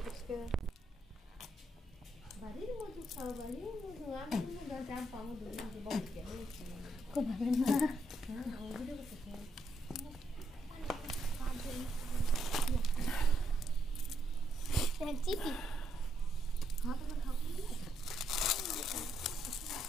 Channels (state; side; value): normal; both; correlation 0.77